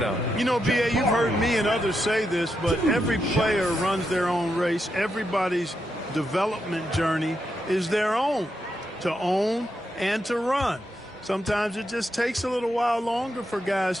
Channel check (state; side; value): normal; both; correlation 0.84